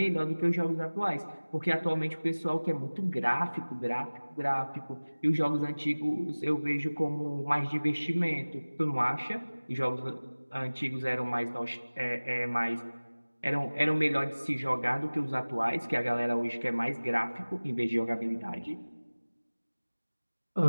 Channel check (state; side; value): inverted; both; correlation -1.00